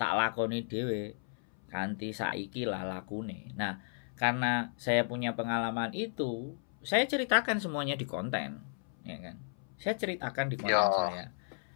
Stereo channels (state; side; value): silent; right; 55 dB below the other